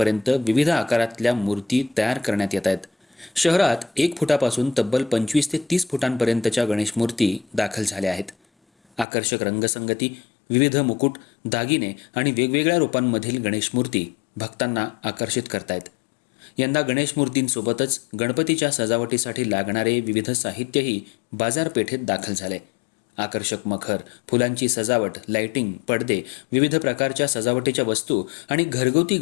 विविध आकारातल्या मूर्ती तयार करण्यात येत आहेत. शहरात 1 फुटापासून तब्बल 25 ते 30 फुटांपर्यंतच्या गणेश मूर्ती दाखल झाल्या आहेत. आकर्षक रंगसंगती, विविध मुकुट, दागिने आणि वेगवेगळ्या रूपांमधील गणेश मूर्ती भक्तांना आकर्षित करतायत. यंदा गणेश मूर्तींसोबतच गणपतीच्या सजावटीसाठी लागणारे विविध साहित्यही बाजारपेठेत दाखल झाले. आकर्षक मखर, फुलांची सजावट, लाइटिंग, पडदे, विविध प्रकारच्या सजावटीच्या वस्तू आणि घरगुती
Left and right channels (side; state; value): right; drops out; at 9.1 s